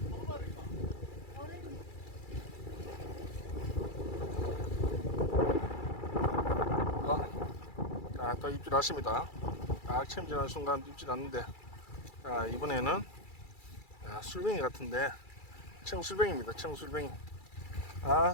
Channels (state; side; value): late; right; 2.3 ms